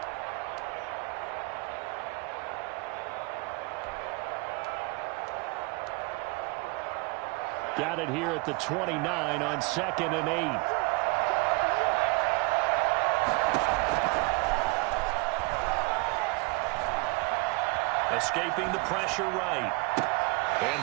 Got it here at the 29 on 2nd and 8. Escaping the pressure right. And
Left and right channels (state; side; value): quieter; left; 27.8 dB